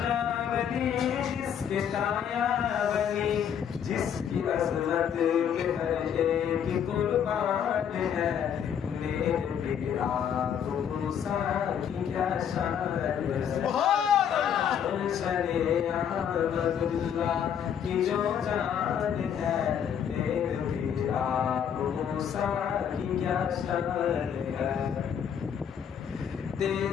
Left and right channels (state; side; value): quieter; right; 8.5 dB